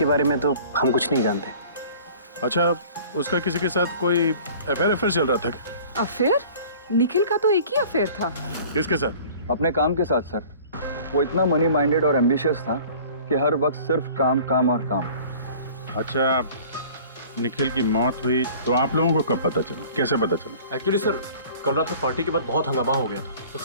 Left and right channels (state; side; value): inverted; both; correlation -0.47